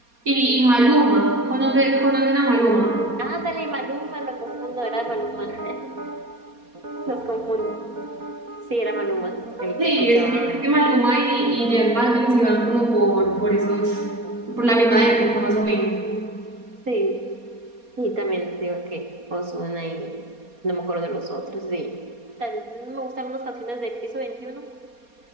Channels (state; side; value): late; left; 4.2 ms